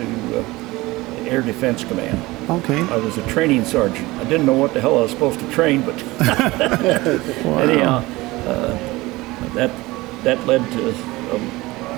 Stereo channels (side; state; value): left; quieter; 20.5 dB